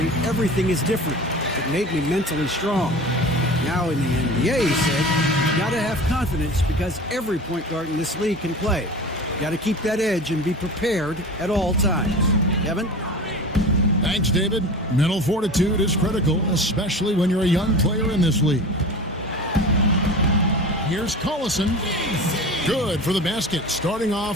everything is different. It made me mentally strong. Now in the NBA, he said, you got to have confidence because every point guard in this league can play. You got to keep that edge and be prepared at all times. Kevin? Thanks, David. Mental fortitude is critical, especially when you're a young player in this league. Here's Collison. Good for the basket. Starting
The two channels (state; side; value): normal; both; correlation 0.35